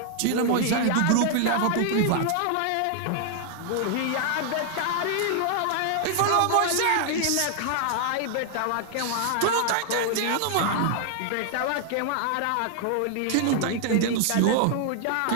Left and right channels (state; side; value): different; both; correlation 0.00